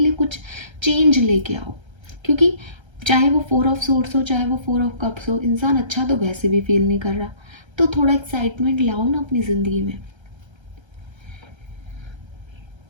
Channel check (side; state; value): left; late; 1.3 ms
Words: कुछ चेंज लेके आओ। क्योंकि चाहे वो 4 ऑफ सोर्स हो, चाहे वो 4 ऑफ कप्स हो, इंसान अच्छा तो वैसे भी फील नहीं कर रहा। तो थोड़ा एक्साइटमेंट लाओ ना अपनी ज़िंदगी में।